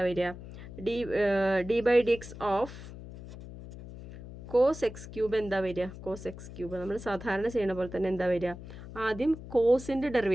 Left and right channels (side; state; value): left; noise; hum, 13 dB below the sound